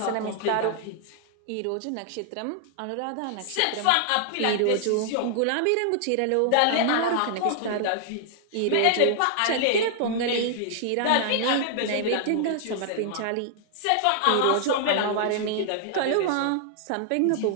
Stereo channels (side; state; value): both; different; correlation 0.00